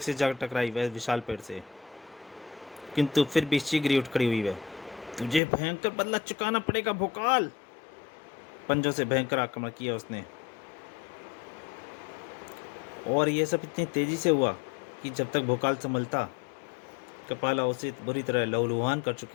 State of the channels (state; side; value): drops out; right; at 5.4 s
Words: जा टकराई वह विशाल पेड़ से, किंतु फिर भी शीघ्र ही उठ खड़ी हुई वह। तुझे भयंकर बदला चुकाना पड़ेगा भोकाल। पंजों से भयंकर आक्रमण किया उसने, और यह सब इतनी तेजी से हुआ कि जब तक भोकाल संभलता, कपाला उसे बुरी तरह लहूलुहान कर